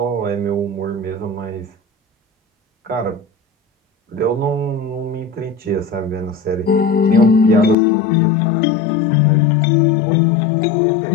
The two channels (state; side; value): drops out; right; at 7.8 s